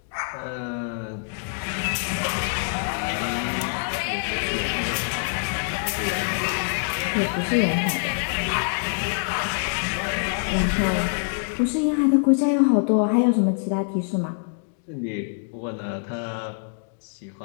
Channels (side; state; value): right; silent; digital silence